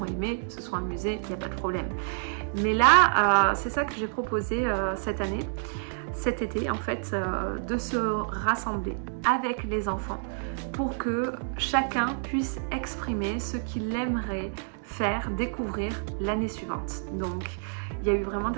aimé, se sont amusés, il n'y a pas de problème. Mais là, c'est ça que j'ai proposé cette année, cet été en fait de se rassembler avec les enfants pour que chacun puisse exprimer ce qu'il aimerait faire découvrir l'année suivante. Donc il y a eu vraiment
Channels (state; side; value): silent; left; digital silence